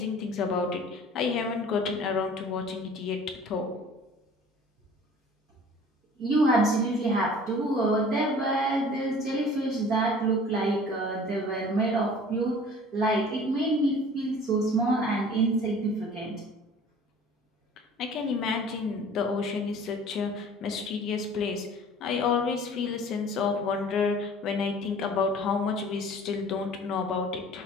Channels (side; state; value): both; normal; correlation 0.47